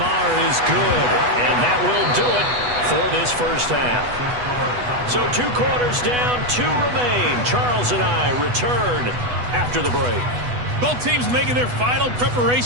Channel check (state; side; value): late; left; 8.1 ms